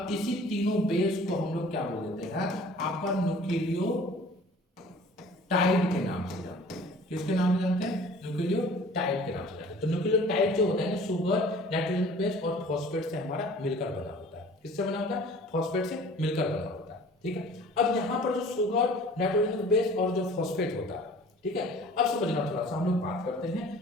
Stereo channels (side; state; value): both; normal; correlation 0.48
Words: इसी तीनों बेस को हम लोग क्या बोल देते हैं, आपका न्यूक्लियोटाइड के नाम से जानते हैं। किसके नाम से जानते हैं, न्यूक्लियोटाइड के नाम से जानते हैं। तो न्यूक्लियोटाइड जो होता है ना, शुगर, नाइट्रोजन बेस और फॉस्फेट से हमारा मिलकर बना होता है। किससे बना होता है, फॉस्फेट से मिलकर बना होता है, ठीक है। अब यहाँ पर जो शुगर, नाइट्रोजन बेस और जो फॉस्फेट होता है, ठीक है, अब समझना थोड़ा सा हम लोग बात करते